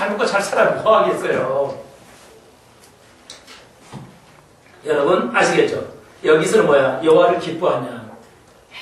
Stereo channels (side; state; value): both; identical; correlation 1.00